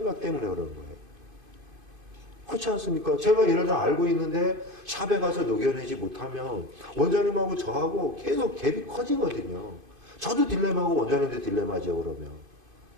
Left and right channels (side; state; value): left; late; 2.5 ms